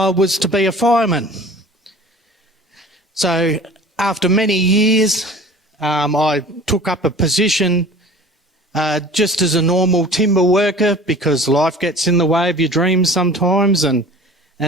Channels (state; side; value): normal; both; correlation 0.43